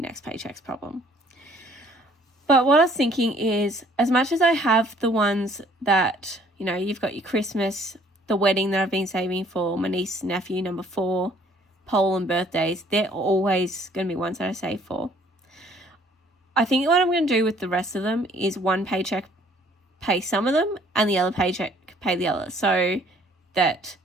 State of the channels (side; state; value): both; normal; correlation 0.59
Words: paycheck's problem. But what I was thinking is, as much as I have the ones that, you know, you've got your Christmas, the wedding that I've been saving for, my niece, nephew, number 4, pole and birthdays, they're always going to be ones that I save for. I think what I'm going to do with the rest of them is one paycheck pay some of them and the other paycheck pay the other. So that,